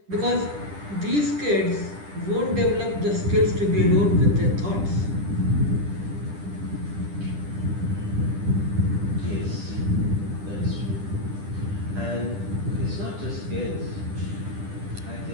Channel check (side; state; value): left; late; 10 ms